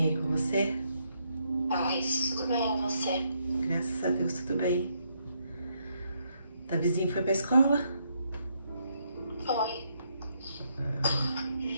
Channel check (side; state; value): both; inverted; correlation -0.76